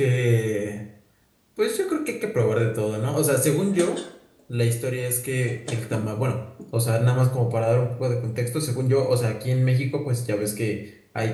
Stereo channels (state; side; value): identical; both; correlation 1.00